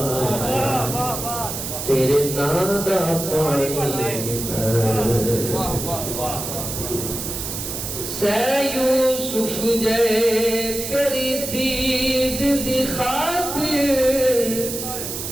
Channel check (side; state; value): right; noise; hiss, 6 dB below the sound